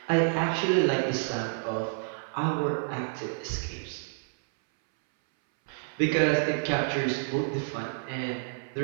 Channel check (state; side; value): silent; left; 59 dB below the other